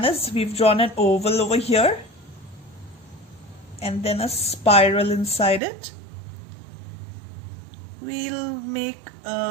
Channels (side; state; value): left; drops out; at 5.6 s